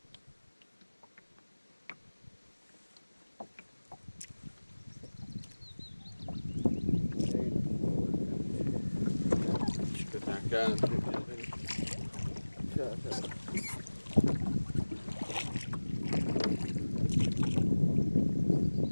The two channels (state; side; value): inverted; both; correlation -1.00